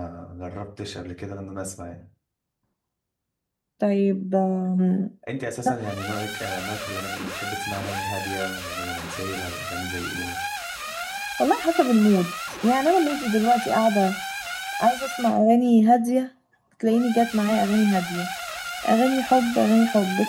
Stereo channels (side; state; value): both; identical; correlation 1.00